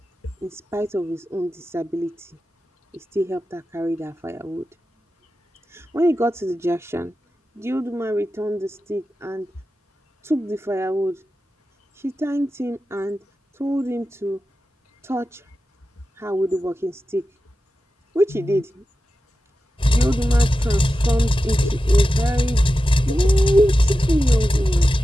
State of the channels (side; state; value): both; normal; correlation 0.92